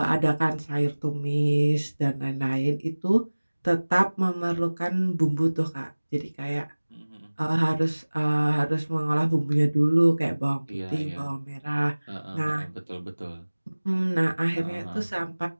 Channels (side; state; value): both; inverted; correlation -1.00